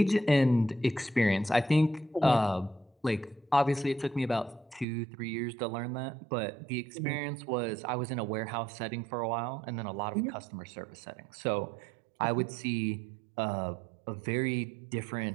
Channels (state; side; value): drops out; left; at 4.9 s